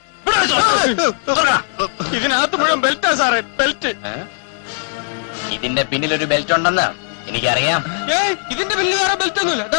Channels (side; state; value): right; silent; 59 dB below the other